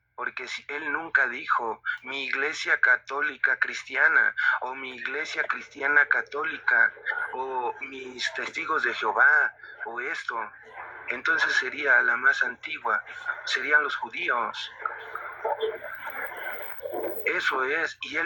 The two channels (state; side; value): identical; both; correlation 1.00